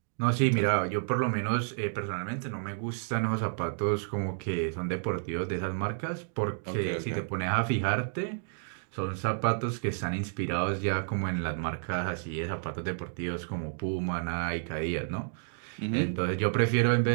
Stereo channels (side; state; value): left; silent; digital silence